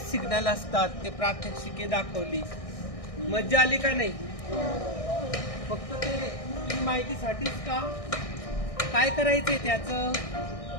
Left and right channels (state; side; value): late; right; 1.6 ms